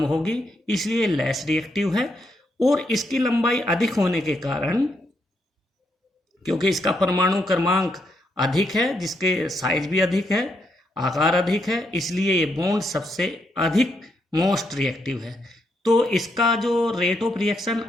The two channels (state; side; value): normal; both; correlation 0.78